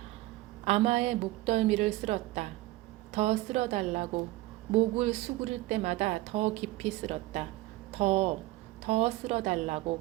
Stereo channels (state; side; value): quieter; left; 18.2 dB